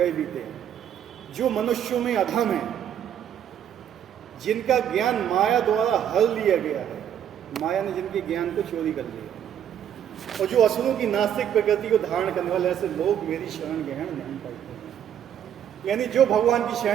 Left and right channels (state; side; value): quieter; left; 9.7 dB